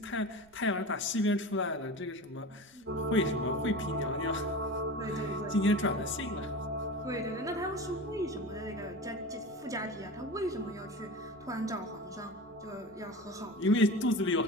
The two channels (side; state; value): right; noise; rumble, 30 dB below the sound